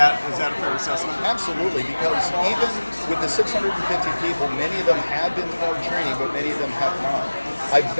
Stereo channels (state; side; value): inverted; both; correlation -1.00